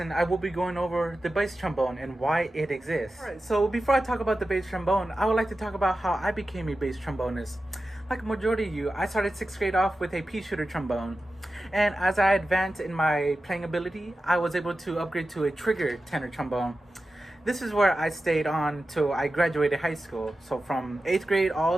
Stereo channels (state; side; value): normal; both; correlation 0.93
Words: I will be going over the bass trombone and why it exists. Alright, so before I talk about the bass trombone, I would like to talk about how I became a bass trombonist. Like a majority of you, I started 6th grade off with a pea shooter trombone. And as I advanced in my playing ability, I was able to upgrade to a trigger tenor trombone. This is where I stayed on till I graduated high school. So from 8th grade